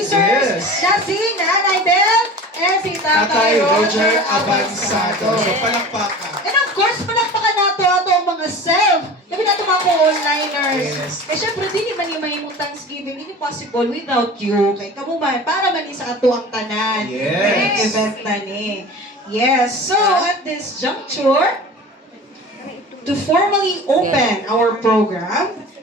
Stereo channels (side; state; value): both; normal; correlation 0.37